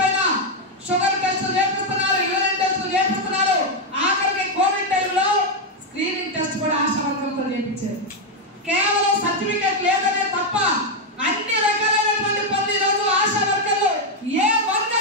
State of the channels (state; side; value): normal; both; correlation 0.02